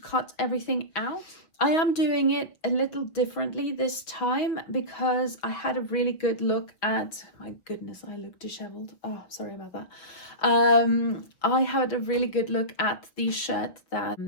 everything out. I am doing it a little differently this time because I had a really good look at, my goodness, I look disheveled. Oh, sorry about that. I had a really good look at the shirt that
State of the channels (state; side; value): late; right; 6.2 ms